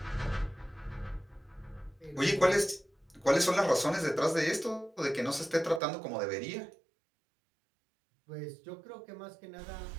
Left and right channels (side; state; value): left; drops out; at 5.8 s